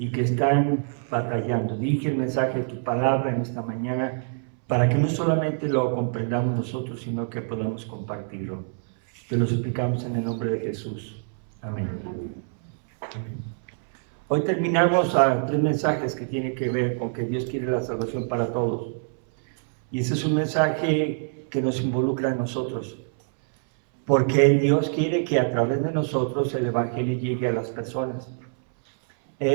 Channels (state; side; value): silent; left; 62 dB below the other